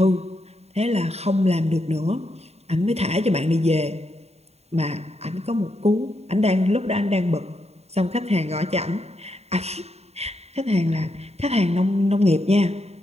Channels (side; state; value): left; late; 0.31 ms